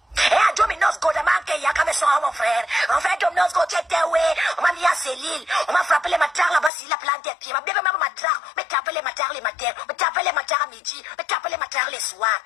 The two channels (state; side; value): drops out; right; at 6.7 s